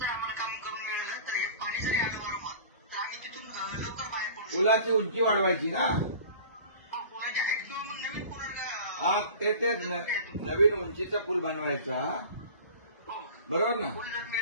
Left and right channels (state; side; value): inverted; both; correlation -0.41